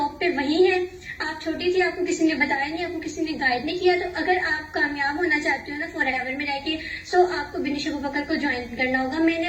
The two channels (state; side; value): identical; both; correlation 1.00